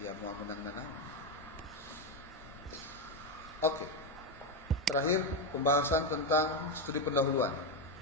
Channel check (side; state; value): both; normal; correlation 0.09